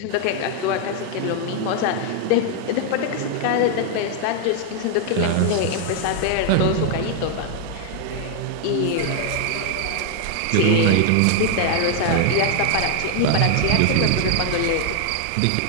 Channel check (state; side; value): different; both; correlation 0.00